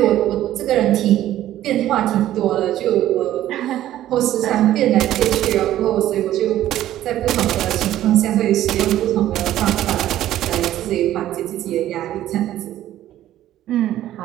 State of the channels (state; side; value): quieter; left; 13.1 dB